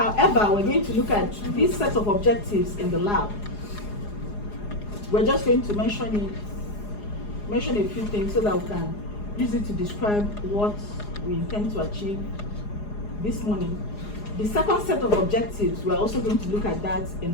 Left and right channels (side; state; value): right; late; 4.8 ms